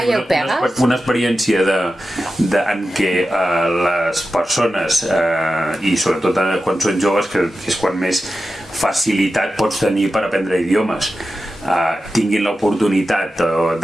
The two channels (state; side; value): normal; both; correlation 0.92